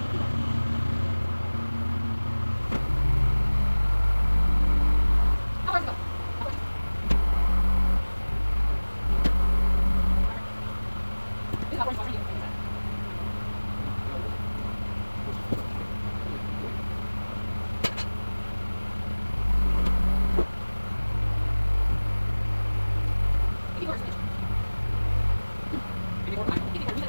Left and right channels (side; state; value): both; inverted; correlation -1.00